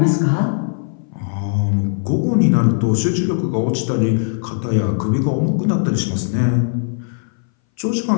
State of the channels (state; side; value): silent; right; 61 dB below the other